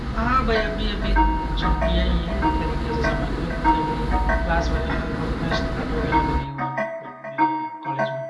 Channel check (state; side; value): identical; both; correlation 1.00